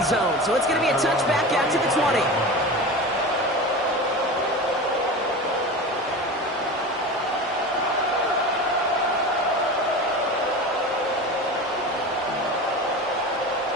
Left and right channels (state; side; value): normal; both; correlation 0.29